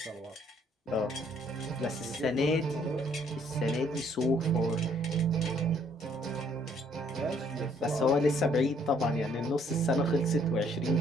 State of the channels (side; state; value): both; normal; correlation 0.64